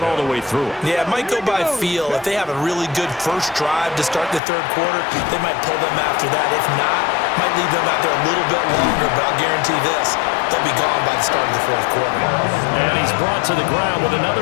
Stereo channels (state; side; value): drops out; right; at 4.4 s